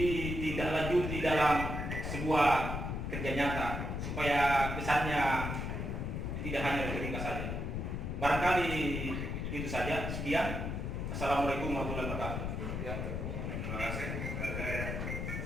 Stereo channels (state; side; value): noise; left; rumble, 3 dB below the sound